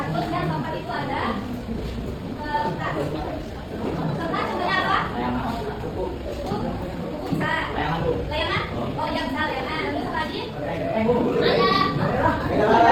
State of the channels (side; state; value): both; identical; correlation 1.00